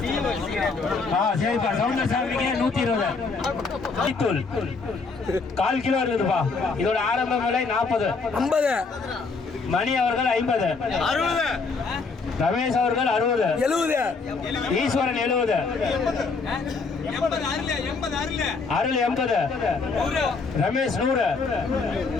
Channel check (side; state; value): right; quieter; 4.4 dB